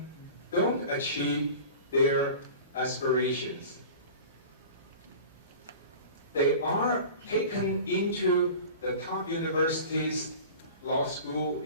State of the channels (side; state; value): both; inverted; correlation -0.38